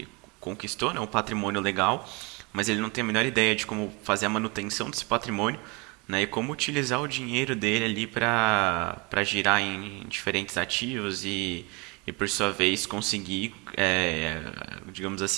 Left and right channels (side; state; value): left; quieter; 28.4 dB